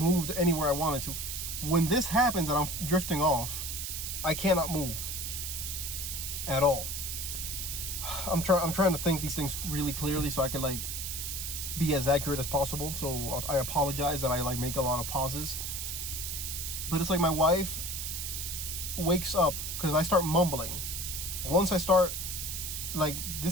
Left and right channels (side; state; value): right; noise; hiss, 4 dB below the sound